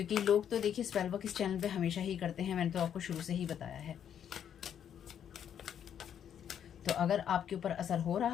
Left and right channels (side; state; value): right; quieter; 9.1 dB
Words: लोग तो देखिए स्पेल वर्क इस चैनल पे हमेशा ही करते हैं, मैंने तो आपको शुरू से ही बताया है। तो अगर आपके ऊपर असर हो